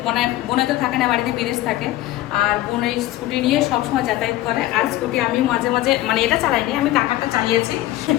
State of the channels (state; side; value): quieter; right; 15.5 dB